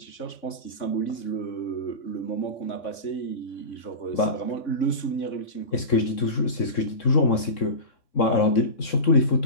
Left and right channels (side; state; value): right; late; 3.6 ms